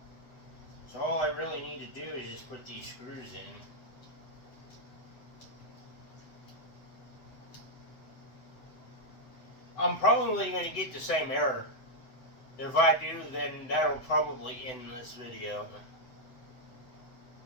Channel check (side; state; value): right; late; 7.9 ms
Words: so all I really need to do is just put these screws in. I'm probably going to get the same error. If I do, then that'll probably end this video.